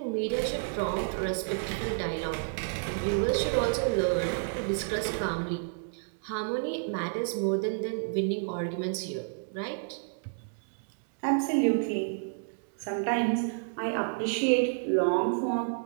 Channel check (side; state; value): left; silent; digital silence